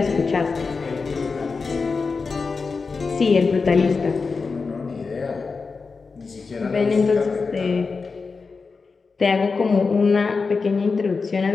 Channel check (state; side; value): quieter; right; 4.6 dB